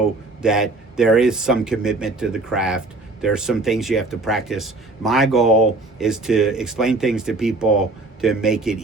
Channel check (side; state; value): left; quieter; 3.1 dB